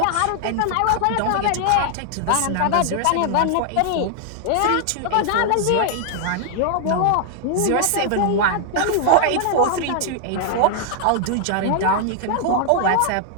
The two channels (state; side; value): different; both; correlation 0.00